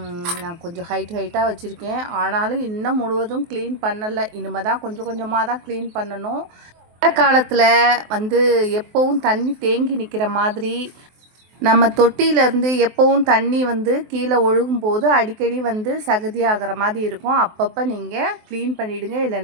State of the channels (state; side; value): late; left; 23 ms